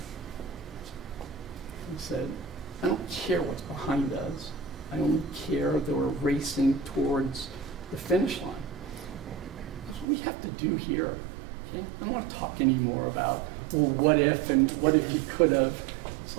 He said, I don't care what's behind us. I only care that we're racing towards the finish line. That's what we have to do here. Okay? I don't want to talk anymore about, well, what if and what if you could have. It's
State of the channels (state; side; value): drops out; left; at 10.1 s